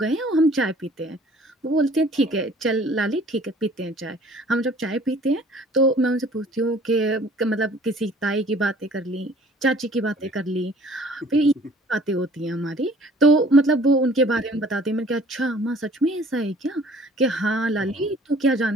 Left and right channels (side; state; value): both; normal; correlation 0.53